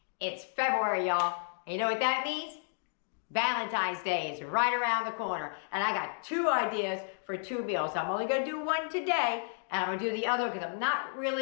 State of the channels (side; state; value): right; silent; digital silence